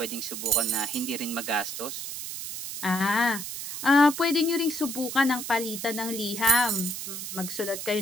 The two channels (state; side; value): noise; right; hiss, 7 dB below the sound